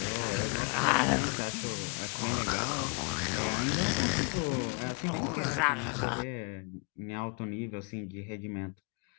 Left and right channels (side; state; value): right; quieter; 35.1 dB